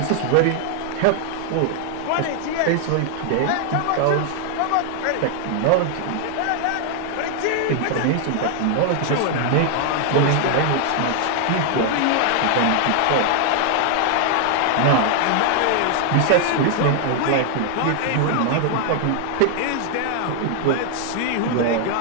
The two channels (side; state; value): both; different; correlation 0.00